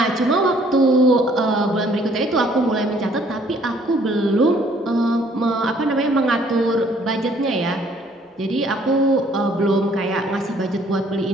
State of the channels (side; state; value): both; normal; correlation 0.61